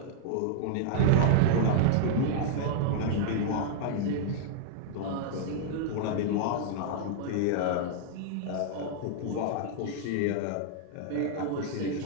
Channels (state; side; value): different; both; correlation -0.01